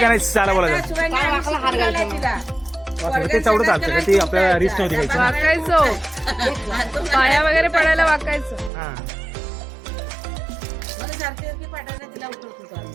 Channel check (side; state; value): left; drops out; at 8.7 s